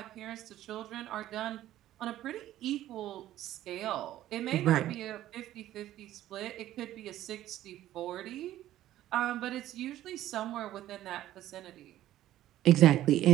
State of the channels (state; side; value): quieter; left; 13.5 dB